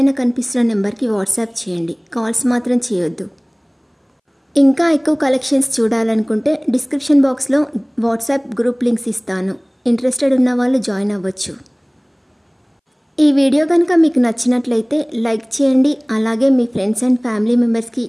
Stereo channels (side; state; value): both; identical; correlation 1.00